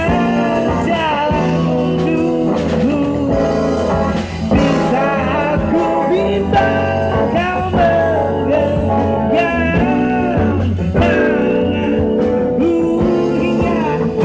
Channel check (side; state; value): both; identical; correlation 1.00